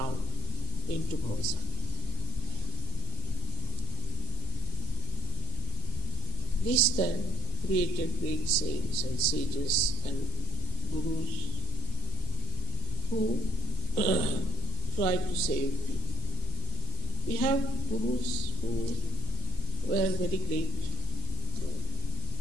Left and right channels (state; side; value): normal; both; correlation 0.45